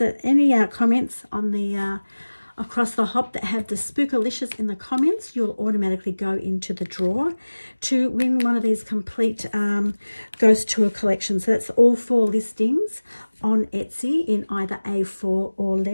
any comments on the across the hop that have the spookalicious in the comments, you'll automatically go into the draw to win one of these complete Ghost Tour collections. So that's all 4 listings on Etsy in either A4 or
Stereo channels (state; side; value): inverted; both; correlation -1.00